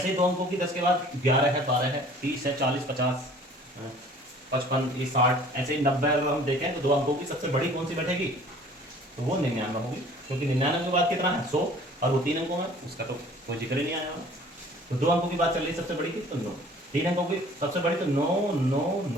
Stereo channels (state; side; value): normal; both; correlation 0.50